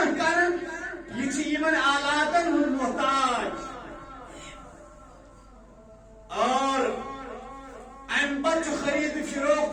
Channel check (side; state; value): both; identical; correlation 1.00